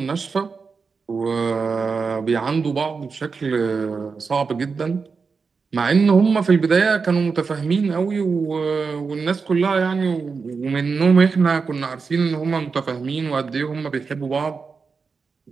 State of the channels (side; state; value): left; quieter; 5.0 dB